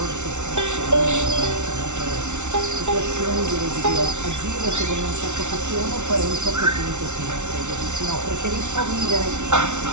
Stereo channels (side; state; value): left; late; 0.83 ms